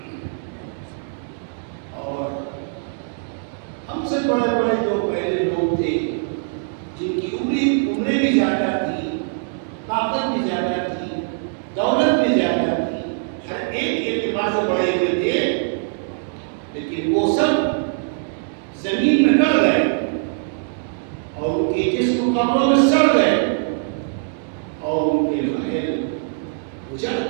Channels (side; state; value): left; silent; digital silence